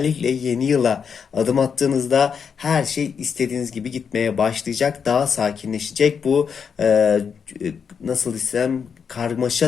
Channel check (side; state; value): right; quieter; 6.6 dB